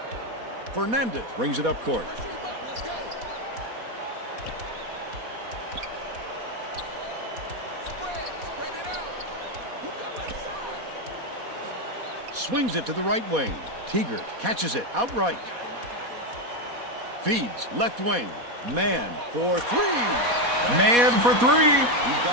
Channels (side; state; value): left; late; 4.2 ms